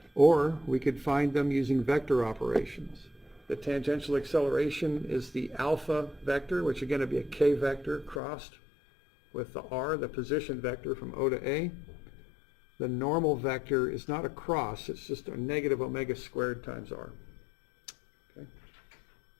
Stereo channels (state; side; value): drops out; right; at 8.2 s